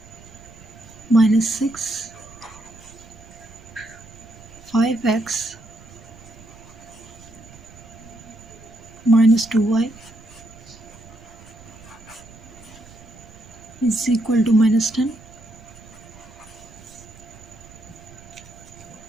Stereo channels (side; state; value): right; noise; rumble, 20 dB below the sound